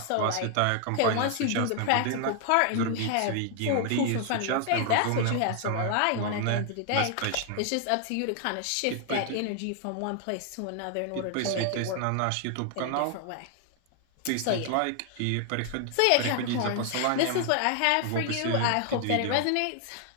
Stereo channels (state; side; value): different; both; correlation 0.00